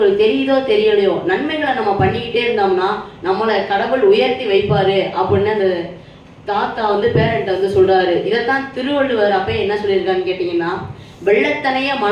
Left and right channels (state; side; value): identical; both; correlation 1.00